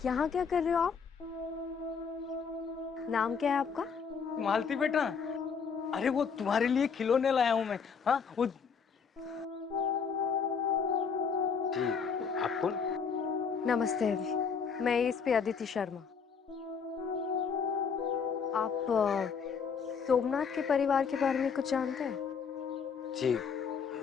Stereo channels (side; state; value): right; quieter; 6.1 dB